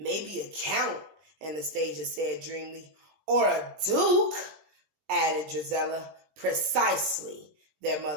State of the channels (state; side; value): late; left; 20 ms